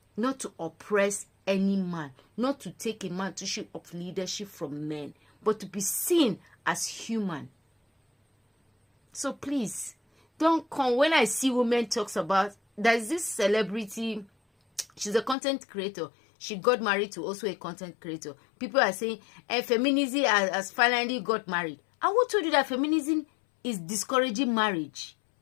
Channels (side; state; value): right; drops out; at 15.4 s